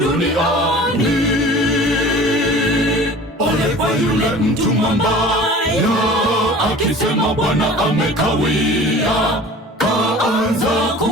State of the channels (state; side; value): normal; both; correlation 0.42